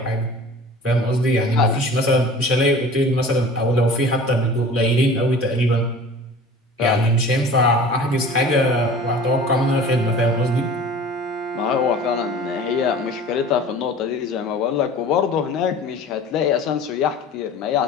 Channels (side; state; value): both; normal; correlation 0.42